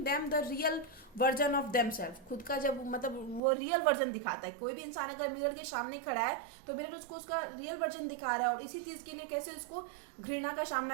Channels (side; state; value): left; drops out; at 3.4 s